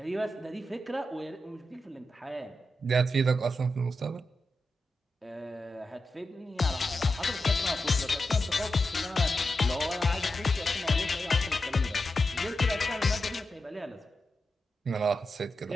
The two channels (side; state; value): both; normal; correlation 0.89